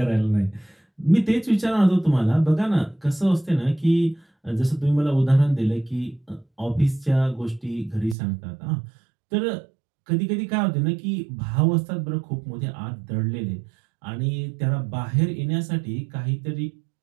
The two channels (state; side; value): drops out; left; at 8.2 s